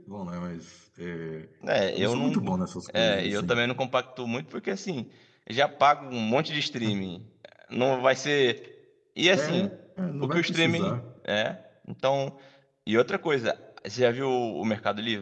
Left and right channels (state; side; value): identical; both; correlation 1.00